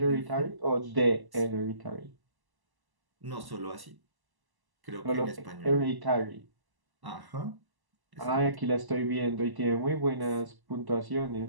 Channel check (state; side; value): late; left; 1.0 ms